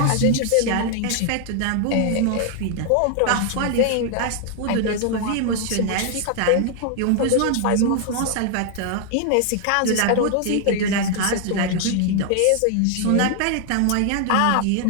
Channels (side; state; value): both; different; correlation 0.00